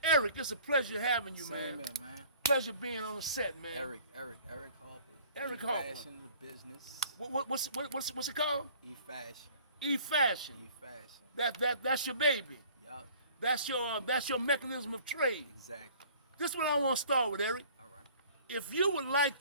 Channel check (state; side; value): inverted; both; correlation -0.52